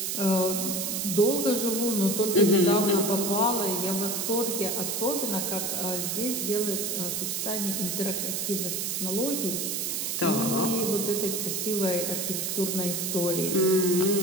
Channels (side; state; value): right; noise; hiss, 1 dB below the sound